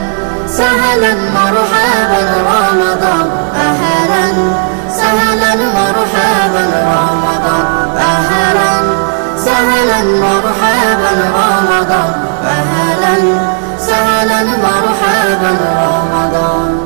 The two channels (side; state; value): left; silent; 56 dB below the other